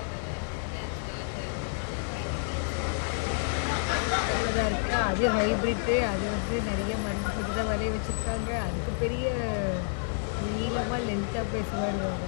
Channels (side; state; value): right; silent; digital silence